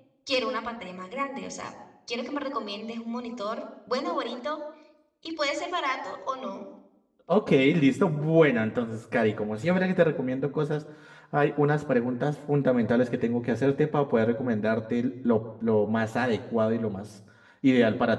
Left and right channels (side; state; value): both; identical; correlation 1.00